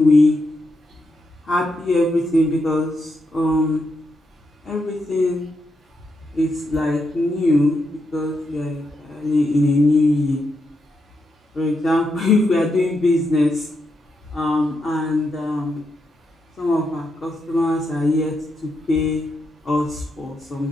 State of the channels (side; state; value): both; normal; correlation 0.83